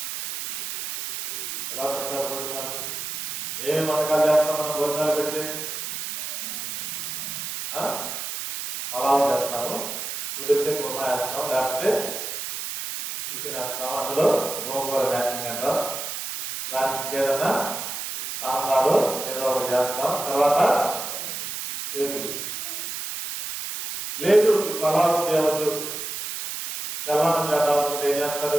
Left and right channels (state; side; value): noise; right; hiss, 6 dB below the sound